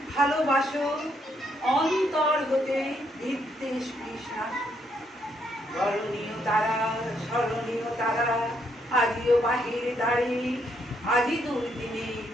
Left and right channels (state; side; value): normal; both; correlation 0.74